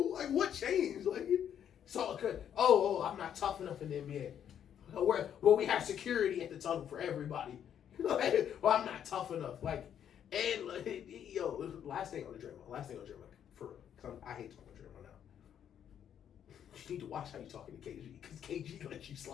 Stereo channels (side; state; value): right; quieter; 9.3 dB